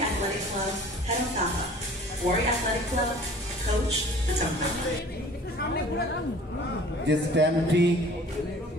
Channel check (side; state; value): both; normal; correlation 0.47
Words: Athletic Club, head of Taha, Wari Athletic Club, coach Patampa. যে স্ট্যাম্পটি